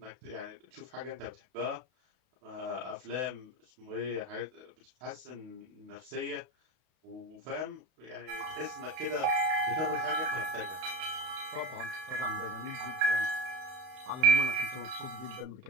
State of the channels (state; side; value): late; left; 31 ms